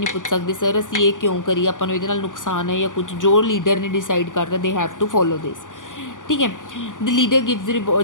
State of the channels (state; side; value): late; right; 0.88 ms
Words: ਪੁੱਛ ਸਕਦੇ, ਸਰ ਅਸੀਂ ਇਹ ਕਿਉਂ ਕਰੀਏ, ਆਪਾਂ ਨੂੰ ਇਹਦੇ ਨਾਲ ਨੁਕਸਾਨ ਹੈ ਜਾਂ ਕੁਝ, ਜੋ ਲੀਡਰ ਨੇ ਡਿਸਾਈਡ ਕਰਤਾ ਦੇ ਹੈਵ ਟੂ ਫੋਲੋ ਦਿਸ। ਠੀਕ ਹੈ, ਦ ਲੀਡਰ ਗਿਵਜ਼